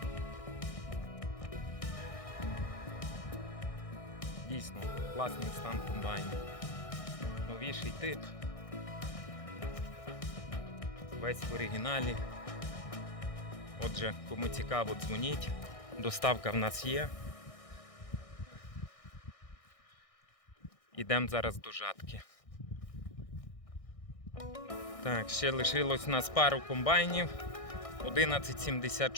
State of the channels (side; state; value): right; late; 1.6 ms